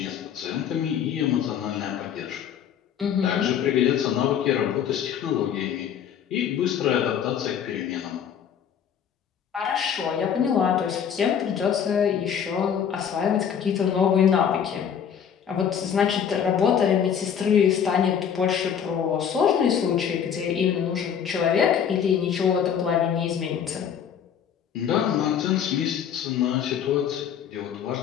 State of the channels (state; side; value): quieter; right; 8.3 dB